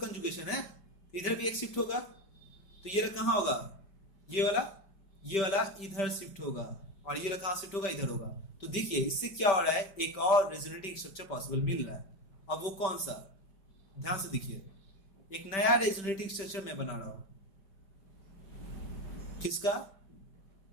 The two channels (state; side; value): late; right; 5.2 ms